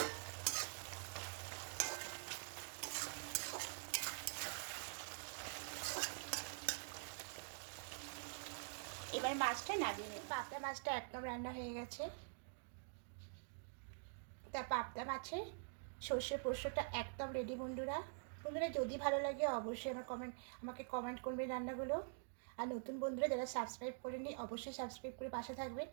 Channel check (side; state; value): left; silent; digital silence